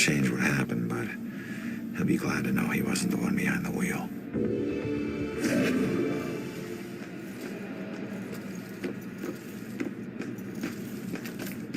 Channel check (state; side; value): identical; both; correlation 1.00